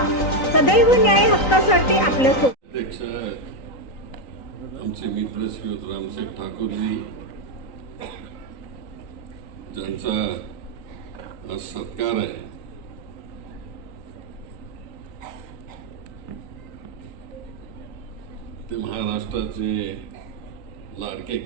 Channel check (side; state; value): right; late; 3.9 ms